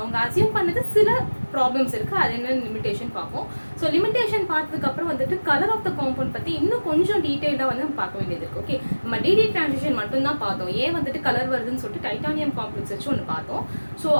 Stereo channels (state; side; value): inverted; both; correlation -1.00